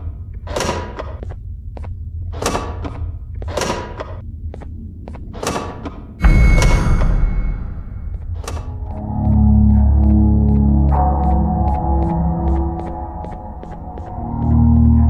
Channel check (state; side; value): identical; both; correlation 1.00